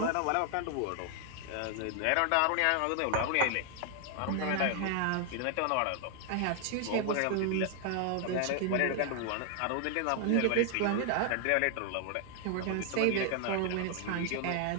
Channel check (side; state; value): both; different; correlation 0.00